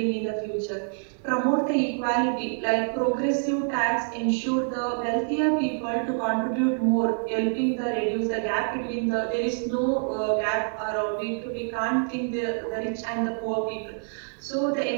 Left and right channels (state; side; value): silent; left; 61 dB below the other